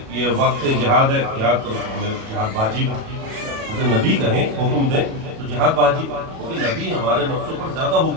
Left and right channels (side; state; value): left; late; 37 ms